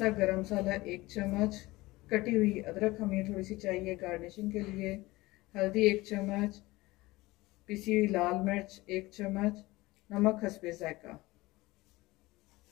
गरम मसाला 1 चम्मच, कटी हुई अदरक हमें थोड़ी सी चाहिए गार्निशिंग के लिए, हल्दी 1 चम्मच, पिसी हुई लाल मिर्च 1 चम्मच, नमक हस्बे जायका।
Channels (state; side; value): quieter; right; 20.2 dB